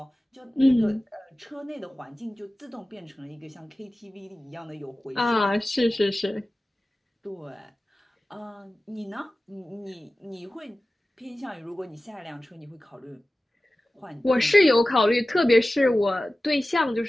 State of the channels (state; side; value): normal; both; correlation 0.96